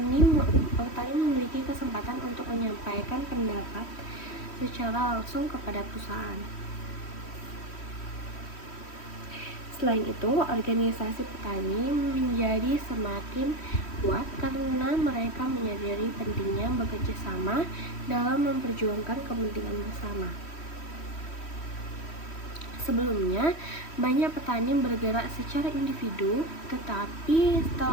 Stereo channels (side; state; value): right; late; 3.1 ms